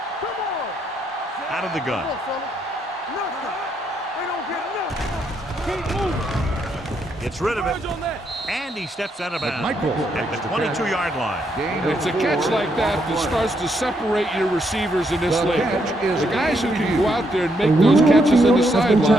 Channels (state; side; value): normal; both; correlation 0.76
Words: Come on. Out of the gun. Come on, fella. Nothing. They don't get nothing. Keep moving. Gets rid of it. On that. And he steps out of bounds Michael at the 22-yard line. It's a catch like that that starts to separate your receivers in this league. The guys who can go out there and make those catches in the